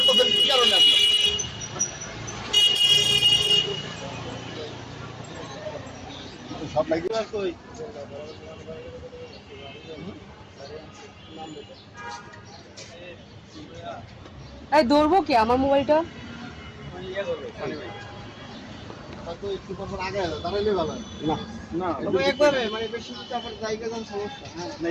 এই ধরবো কি আমার মোবাইলটা?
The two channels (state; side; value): identical; both; correlation 1.00